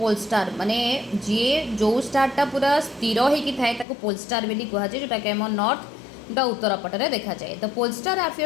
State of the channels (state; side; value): drops out; right; at 3.9 s